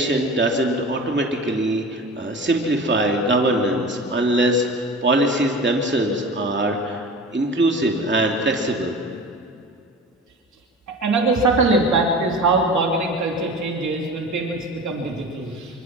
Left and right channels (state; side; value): normal; both; correlation 0.35